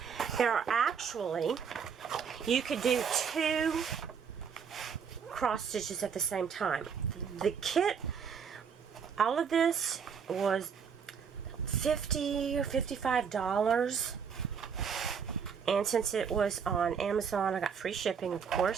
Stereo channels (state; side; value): quieter; left; 6.7 dB